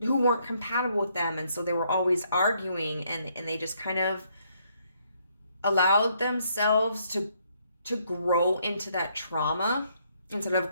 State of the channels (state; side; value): inverted; both; correlation -0.71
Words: weren't compatible with them, and so they were always arguing, and they just kind of allowed themselves to grow into that trauma instead of